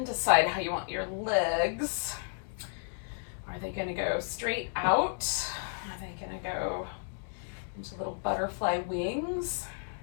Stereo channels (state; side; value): silent; right; digital silence